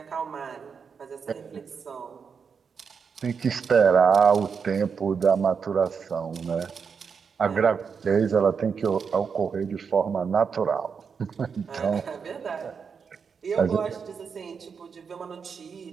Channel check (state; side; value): quieter; left; 6.1 dB